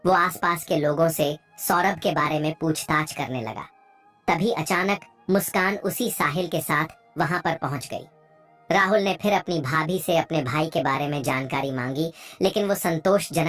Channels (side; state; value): both; identical; correlation 1.00